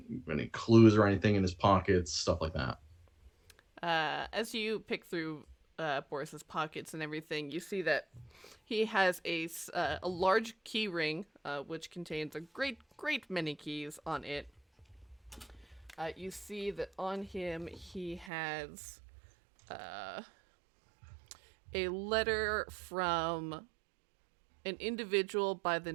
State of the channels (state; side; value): drops out; left; at 18.3 s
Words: clues or anything in his pockets, stuff like that. As you pick through Boris's pockets and everything, you see that he has a large key ring, which contains a great many keys on it. You see that on him he has a letter from an individual by the